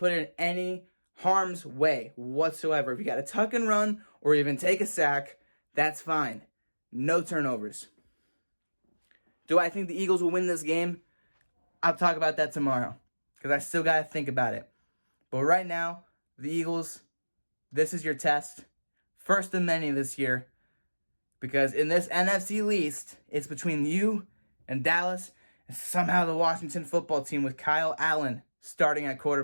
it in any harm's way whatsoever. If you got to tuck and run or even take a sack, that's fine. No turnovers. Do I think the Eagles will win this game? I'll talk about that tomorrow because I still got to think about it. But right now, the Eagles, this is your test. First of many this year. Because in this NFC least, it's between you and Dallas and somehow the Washington football team with Kyle Allen starting at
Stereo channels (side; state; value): both; inverted; correlation -1.00